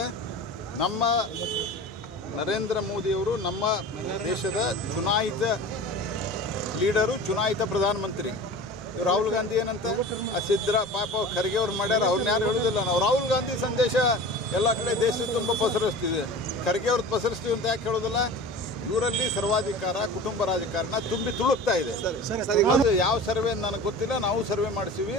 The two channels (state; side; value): normal; both; correlation 0.36